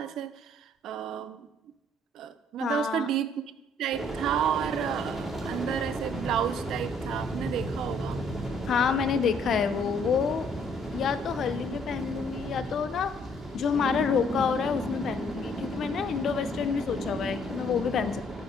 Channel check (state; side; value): normal; both; correlation 0.64